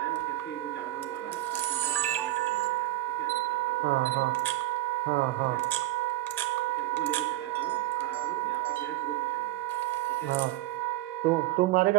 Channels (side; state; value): left; quieter; 16.3 dB